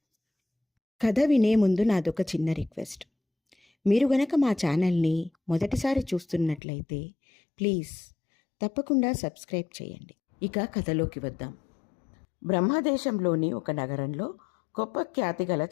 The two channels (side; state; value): right; drops out; at 6.6 s